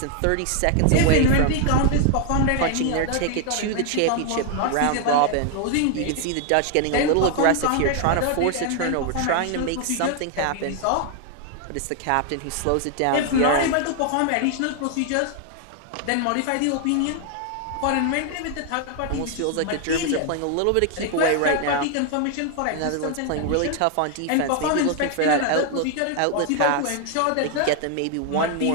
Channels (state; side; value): different; both; correlation 0.00